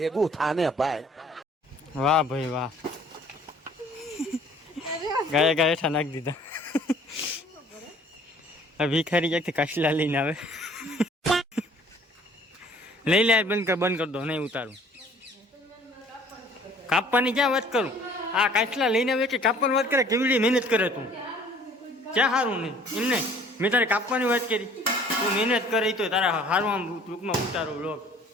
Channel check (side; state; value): both; normal; correlation 0.54